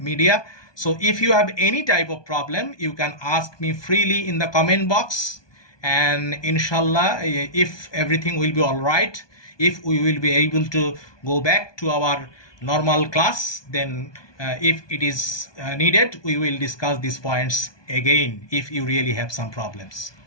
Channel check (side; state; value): right; late; 1.2 ms